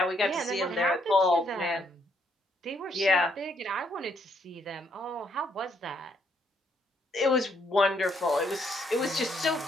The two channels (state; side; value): normal; both; correlation 0.72